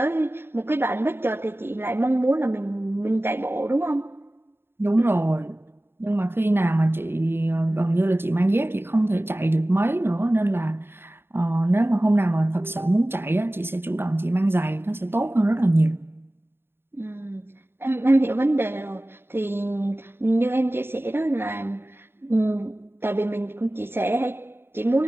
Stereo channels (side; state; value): left; late; 0.11 ms